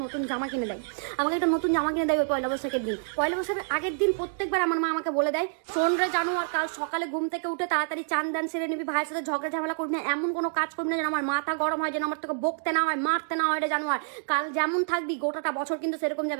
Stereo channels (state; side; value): silent; left; digital silence